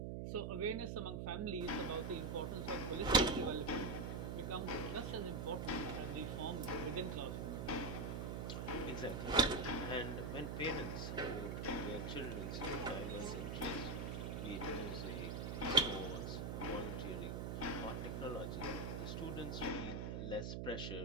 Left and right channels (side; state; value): right; noise; hum, 3 dB below the sound